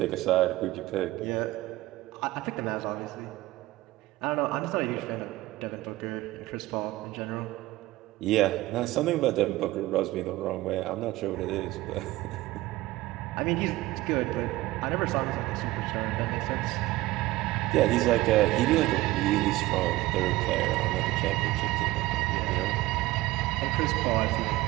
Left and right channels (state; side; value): quieter; left; 18.1 dB